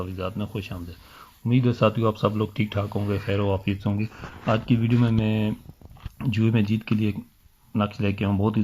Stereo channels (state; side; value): identical; both; correlation 1.00